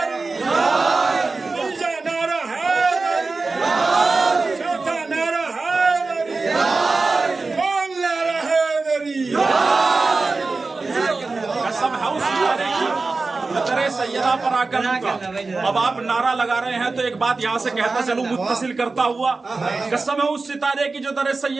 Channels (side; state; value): left; quieter; 3.8 dB